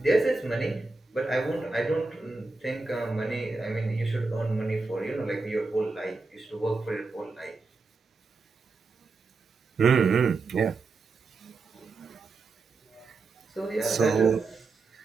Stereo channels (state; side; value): quieter; left; 3.8 dB